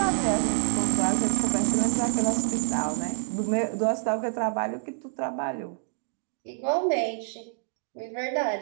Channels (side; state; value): left; silent; digital silence